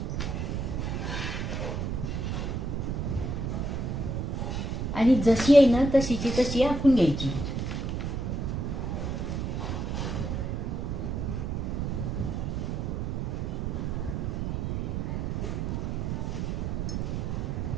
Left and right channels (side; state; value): right; noise; rumble, 1 dB below the sound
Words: आणि जशी आहे ना तशीची तशी आखून घ्यायची.